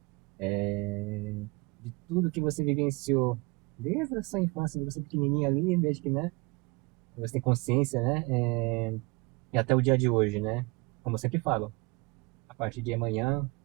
De tudo que você vivenciou desde a sua infância, de você pequenininha ali, desde que, né? Você tem consciência, né? E até o dia de hoje, né? Como eu sempre falo, a partir de amanhã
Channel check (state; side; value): quieter; left; 26.3 dB